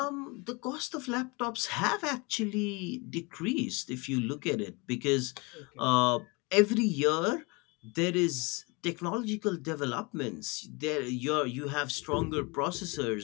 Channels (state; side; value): quieter; right; 27.9 dB